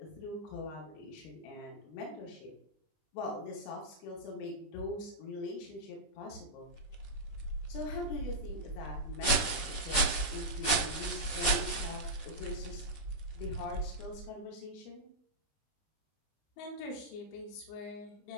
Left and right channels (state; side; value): late; right; 20 ms